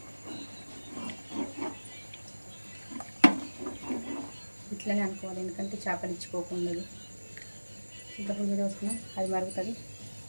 ఇట్లనే అనుకోవాలి. ఎందుకంటే చేపలు ఇచ్చిపోకుండా చింతపండు మీద వస్తున్నాం, అది మరుగుతుంది.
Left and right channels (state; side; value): inverted; both; correlation -1.00